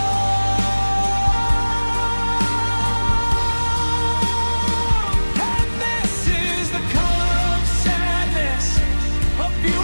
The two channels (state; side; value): inverted; both; correlation -1.00